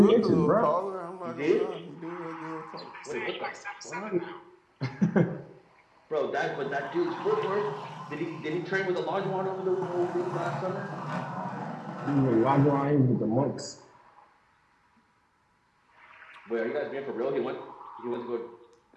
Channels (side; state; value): both; identical; correlation 1.00